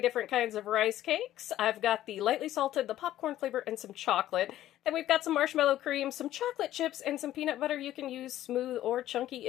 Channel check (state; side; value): quieter; right; 13.4 dB